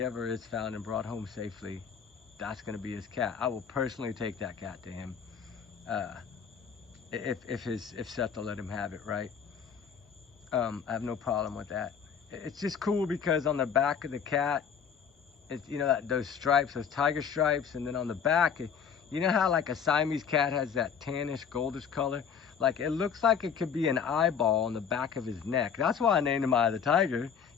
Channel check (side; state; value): right; quieter; 7.0 dB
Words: ever is found and brought home safely, that's going to be his cat. I will personally take that cat to him if Seth will let him have it, right? I have no problem with that. It's just cool because on the back of the cat, it's, you know, those stripes, those tiger stripes, and then on the back, you know how like a Siamese cat has that tannish, goldish color? Like it looks like it could be an eyeball on the back of his neck. That's why I named him Eye of the Tiger.